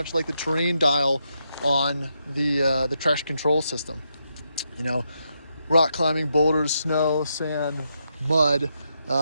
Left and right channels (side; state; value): both; inverted; correlation -0.82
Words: like the terrain dial on the traction control system. You know, rock climbing, boulders, snow, sand, mud.